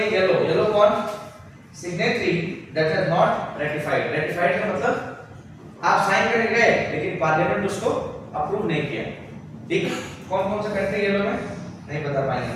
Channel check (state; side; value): identical; both; correlation 1.00